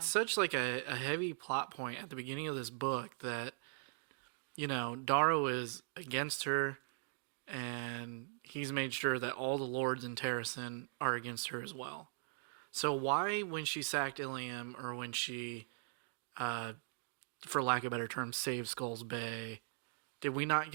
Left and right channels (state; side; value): silent; left; digital silence